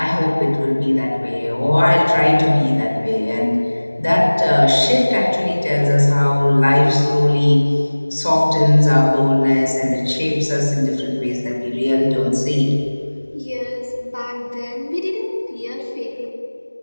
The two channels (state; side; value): inverted; both; correlation -1.00